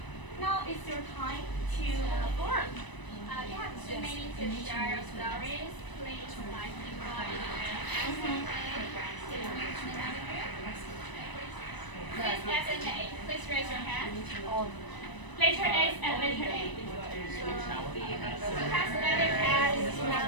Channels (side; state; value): right; late; 1.0 ms